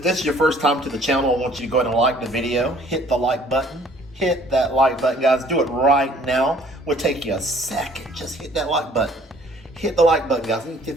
this is your first time to the channel, I want you to go ahead and like the video, hit the like button. Hit that like button, guys. Do it right now. Will take you a second. Just hit that like button. Hit the like button, guys. I need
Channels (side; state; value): both; normal; correlation 0.56